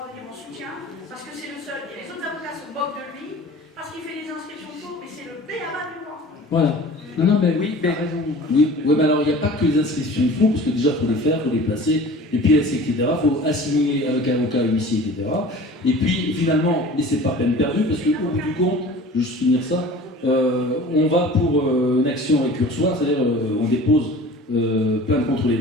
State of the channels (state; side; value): normal; both; correlation 0.42